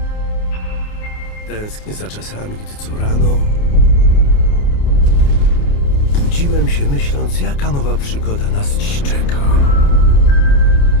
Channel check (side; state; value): right; late; 28 ms